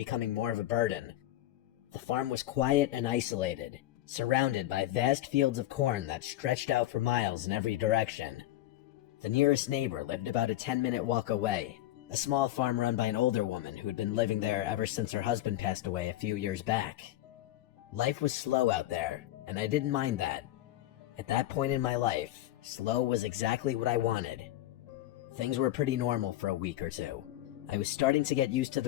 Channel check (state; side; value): quieter; right; 14.6 dB